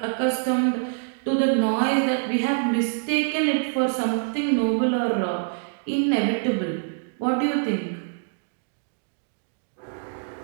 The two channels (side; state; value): left; silent; digital silence